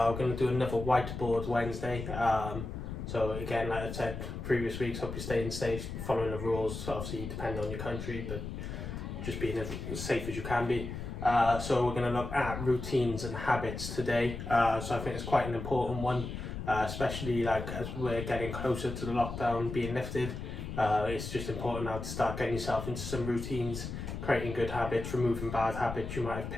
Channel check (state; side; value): noise; left; rumble, 7 dB below the sound